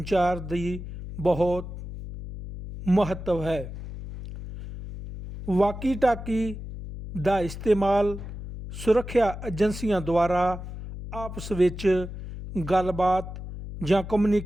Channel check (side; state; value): left; noise; hum, 10 dB below the sound